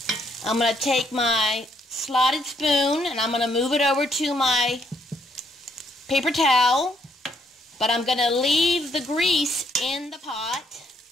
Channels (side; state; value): both; normal; correlation 0.72